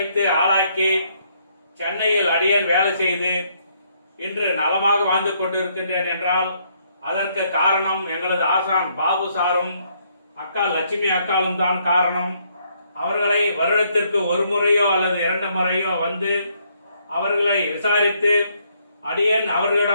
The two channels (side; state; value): both; inverted; correlation -0.71